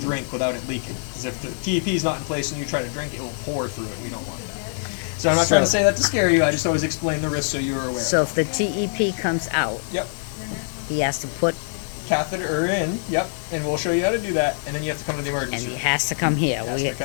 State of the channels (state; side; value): silent; right; digital silence